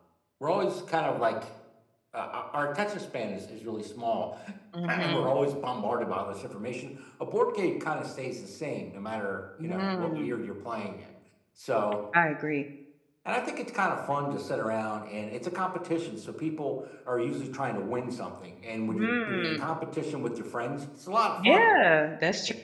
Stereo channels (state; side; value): identical; both; correlation 1.00